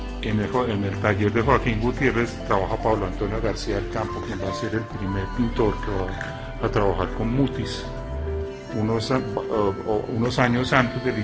en el taller de Joaquín Gutiérrez trabaja Pablo Antonio García del Campo, quien va a ser el primer pintor que va a trabajar con Mutis unos años antes del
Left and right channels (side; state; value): both; identical; correlation 1.00